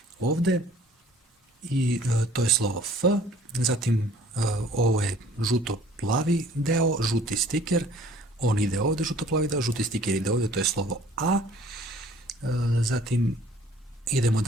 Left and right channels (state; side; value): normal; both; correlation 0.53